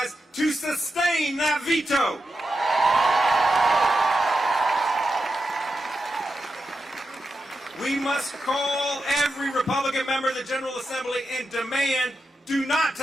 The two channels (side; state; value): both; normal; correlation 0.88